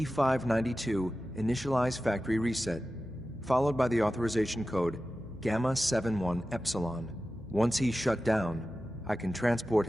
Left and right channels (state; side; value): noise; left; hum, 18 dB below the sound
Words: initialize factory reset, followed by the authorization code Gamma 71 Epsilon. Once he's shut down, I can transport